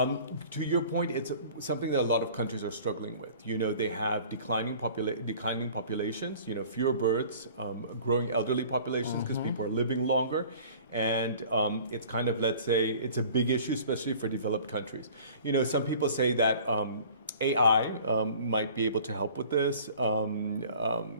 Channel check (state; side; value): inverted; both; correlation -0.47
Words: your point, it's something that a lot of countries are struggling with. They have declining populations, fewer birds, growing elderly populations because people are living longer. And it's kind of, let's say, it's a big issue, especially for developed countries. Some people say that AI might be able to help with this.